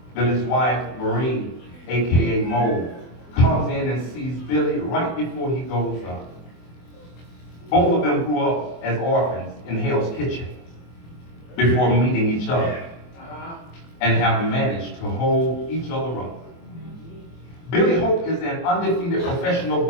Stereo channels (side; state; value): right; late; 24 ms